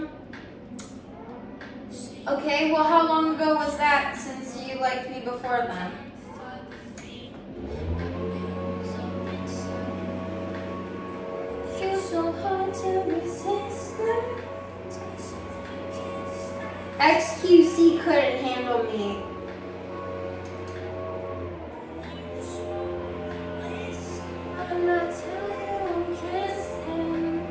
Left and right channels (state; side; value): identical; both; correlation 1.00